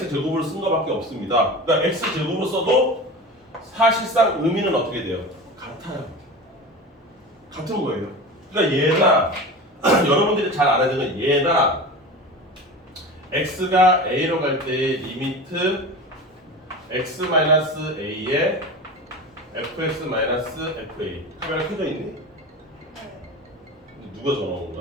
제곱으로 쓴 거밖에 없습니다. 그러니까 X 제곱으로 써도 사실상 의미는 어떻게 돼요? 같아요. 같은 거예요. 그러니까 얘나 여러분들이 잘 알아야 되는 건 얘나 x가 a로 갈 때의 리미트 x-a에 fx-fa. 카메라 켜져 있니? 누가 전화 온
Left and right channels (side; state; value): both; normal; correlation 0.31